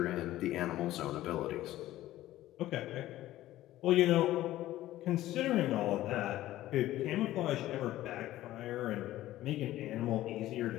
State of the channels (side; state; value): right; quieter; 14.9 dB